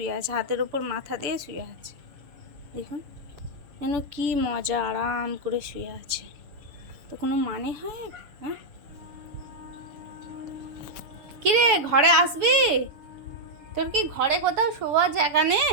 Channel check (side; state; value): left; late; 6.7 ms